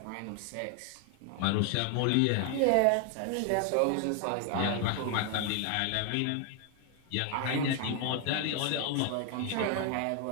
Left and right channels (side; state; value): both; different; correlation 0.00